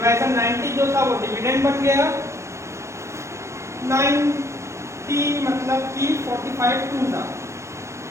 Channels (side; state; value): left; late; 0.14 ms